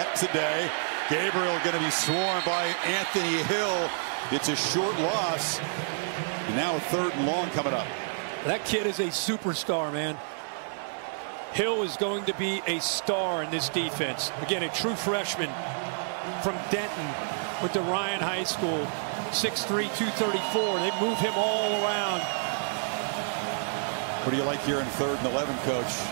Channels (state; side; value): silent; left; 59 dB below the other